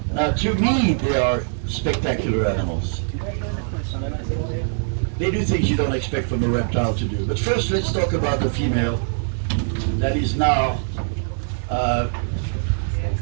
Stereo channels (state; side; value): silent; left; digital silence